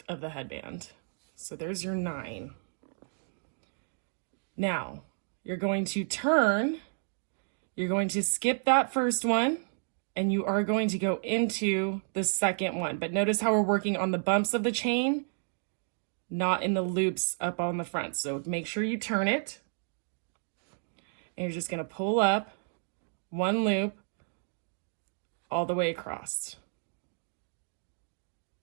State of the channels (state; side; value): silent; left; digital silence